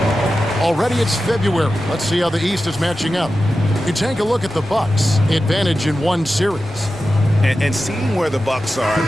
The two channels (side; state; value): both; normal; correlation 0.93